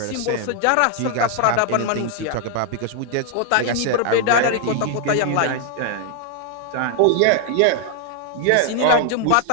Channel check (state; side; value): different; both; correlation 0.00